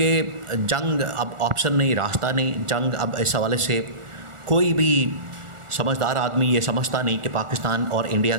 जंग अब ऑप्शन नहीं, रास्ता नहीं। जंग अब इस हवाले से कोई भी समझदार आदमी ये समझता नहीं कि पाकिस्तान और इंडिया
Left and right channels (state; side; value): late; left; 1.4 ms